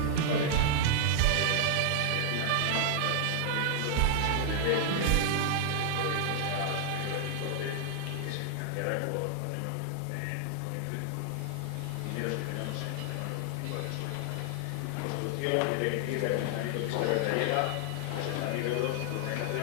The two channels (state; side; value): different; both; correlation -0.01